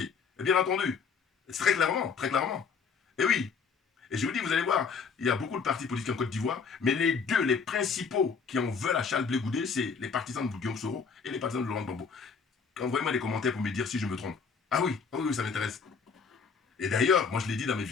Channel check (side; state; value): right; quieter; 5.7 dB